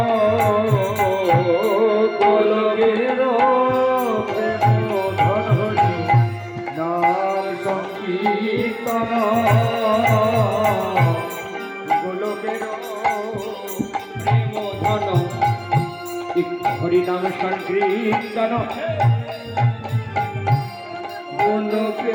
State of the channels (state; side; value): identical; both; correlation 1.00